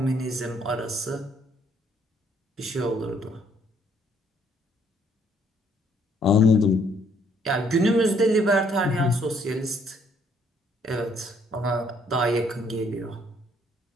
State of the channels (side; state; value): both; normal; correlation 0.66